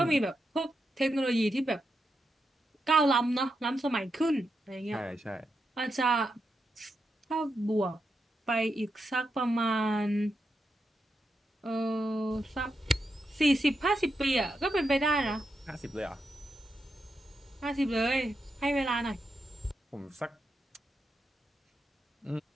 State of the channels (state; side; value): normal; both; correlation 0.85